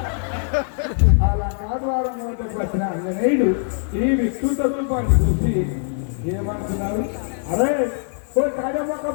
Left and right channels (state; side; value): silent; right; 64 dB below the other